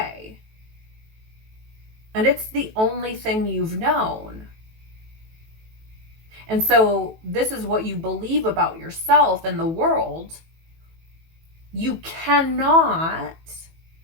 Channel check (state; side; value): late; left; 18 ms